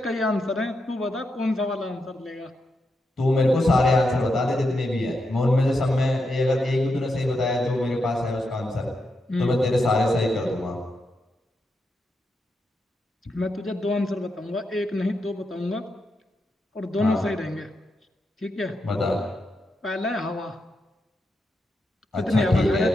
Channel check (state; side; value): normal; both; correlation 0.84